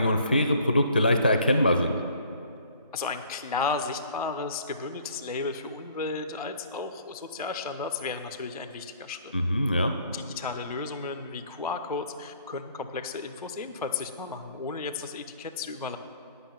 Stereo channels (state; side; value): inverted; both; correlation -0.56